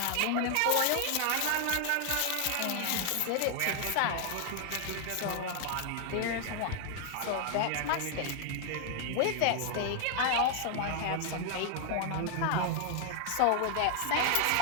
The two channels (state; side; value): different; both; correlation 0.00